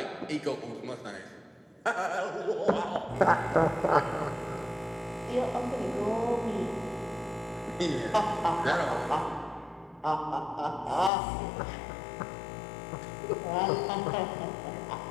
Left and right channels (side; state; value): right; drops out; at 11.1 s